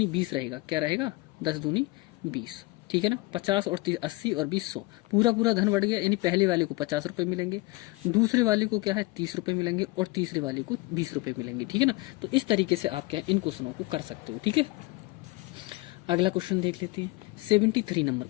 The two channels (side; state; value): right; quieter; 22.3 dB